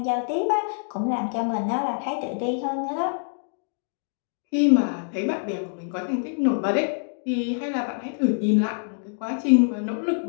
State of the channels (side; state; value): right; silent; digital silence